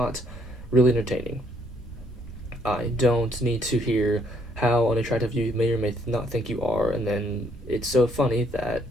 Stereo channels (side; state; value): both; normal; correlation 0.68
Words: really entertaining. I don't need to hear how unattractive you may or may not think you are, and then it's so funny that